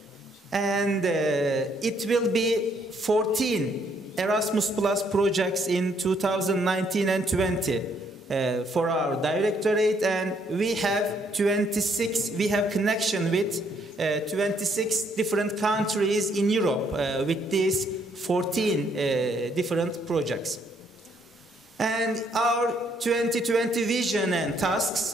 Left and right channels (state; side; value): normal; both; correlation 0.69